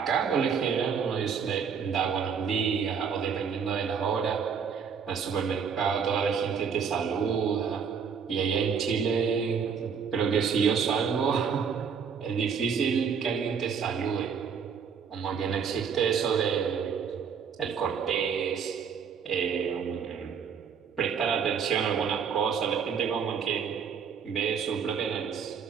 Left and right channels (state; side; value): quieter; left; 6.7 dB